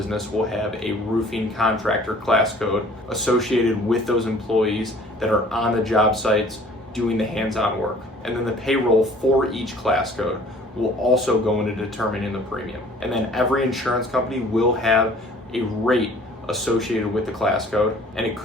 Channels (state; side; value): normal; both; correlation 0.52